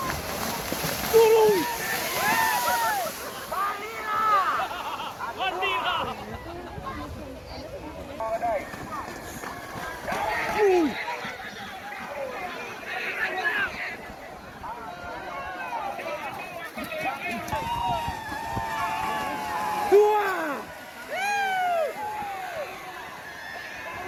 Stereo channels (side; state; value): both; identical; correlation 1.00